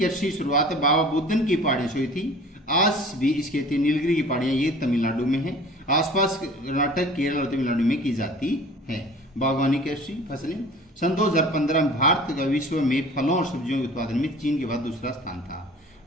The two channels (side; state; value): both; normal; correlation 0.45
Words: शुरुआत बाबा बुदन की पहाड़ियों से हुई थी। आज भी इस खेती नीलगिरी की पहाड़ियां ये तमिलनाडु में है। आसपास कर्नाटक, केरल और तमिलनाडु में की जाती है। बागवानी कृषि फसलें, सन 2015 में भारत का विश्व में फलों और सब्जियों के उत्पादन में चीन के बाद दूसरा स्थान था।